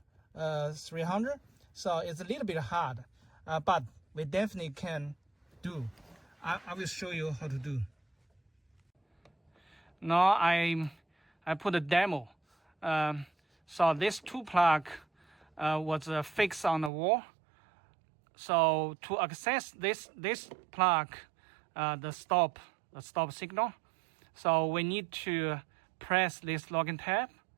300, so it's a little bit hard. But we definitely can do. I will show you how to do. Now I put a demo. So this two plug was fixed on the wall. So to access this plug, the stop signal, so we need to press this locking tab,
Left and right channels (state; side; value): drops out; left; at 16.9 s